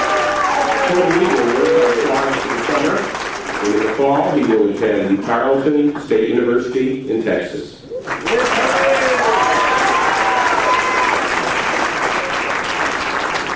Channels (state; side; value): identical; both; correlation 1.00